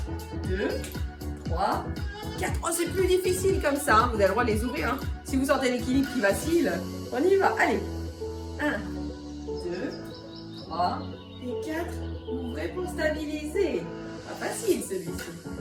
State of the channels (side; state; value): both; identical; correlation 1.00